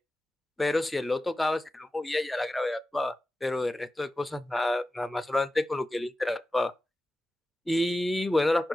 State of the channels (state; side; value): normal; both; correlation 0.94